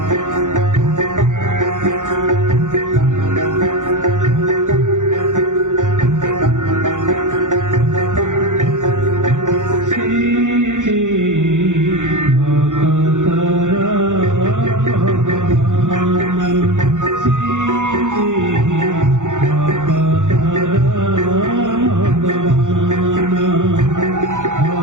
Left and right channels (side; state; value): left; late; 0.86 ms